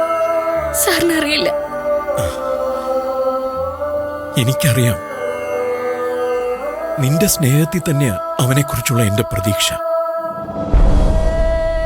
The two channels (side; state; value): both; identical; correlation 1.00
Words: സാറിന് അറിയില്ല. എനിക്കറിയാം. നിന്റെ സ്നേഹത്തിൽ തന്നെയാ അവനെക്കുറിച്ചുള്ള എന്റെ പ്രതീക്ഷ.